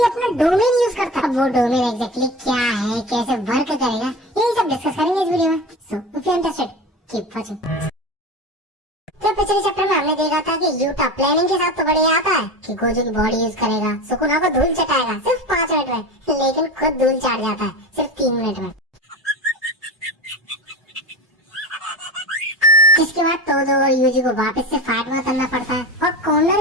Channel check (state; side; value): normal; both; correlation 0.29